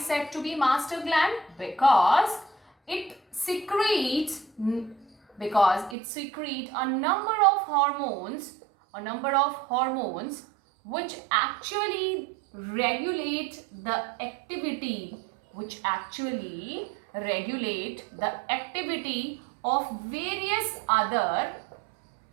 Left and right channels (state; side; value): drops out; left; at 6.0 s